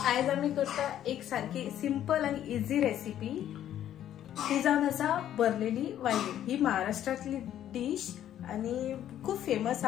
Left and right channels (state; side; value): quieter; right; 11.2 dB